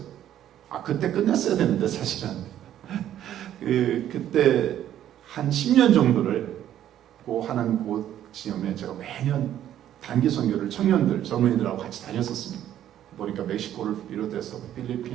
그때 끝냈어야 되는데 사실은 그때 한 10년 정도를 하는 곳 지점에 제가 매년 단기 선교를 청년들, 젊은이들하고 같이 다녔었습니다. 보니까 멕시코를 비롯해서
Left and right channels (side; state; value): left; quieter; 11.4 dB